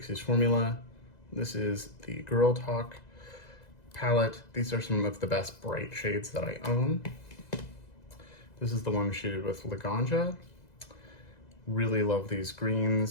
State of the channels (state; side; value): late; right; 2.0 ms